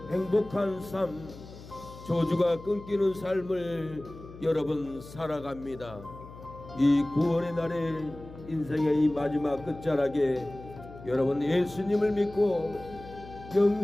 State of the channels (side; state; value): left; noise; hum, 16 dB below the sound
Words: 행복한 삶 저주가 끊기는 삶을 여러분 살아갑니다. 이 구원의 날에 인생의 이 마지막 끝자락에 여러분 예수님을 믿고